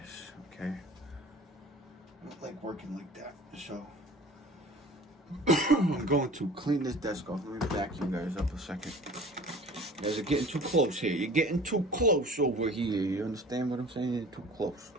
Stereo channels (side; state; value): both; normal; correlation 0.44